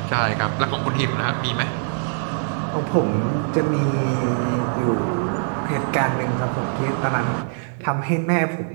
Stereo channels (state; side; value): silent; left; 60 dB below the other